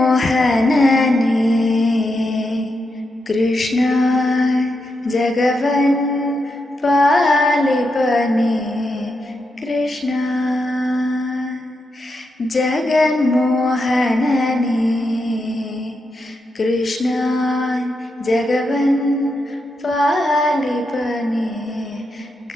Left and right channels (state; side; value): normal; both; correlation 0.85